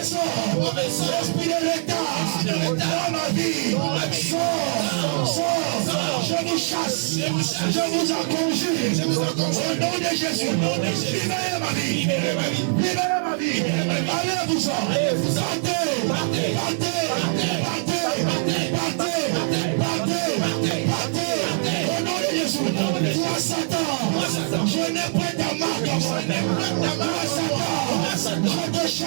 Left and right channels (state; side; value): silent; left; 59 dB below the other